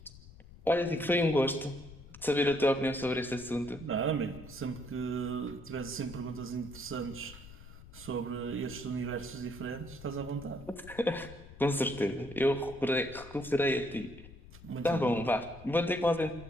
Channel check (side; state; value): left; noise; rumble, 17 dB below the sound